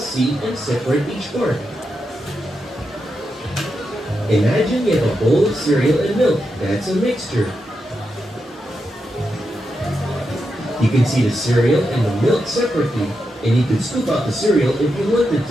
and separate each part. Imagine you have a bowl of cereal and milk. That's a mixture. You can see the cereal and the milk separately, and you can scoop out the cereal if you wanted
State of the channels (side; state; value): both; normal; correlation 0.86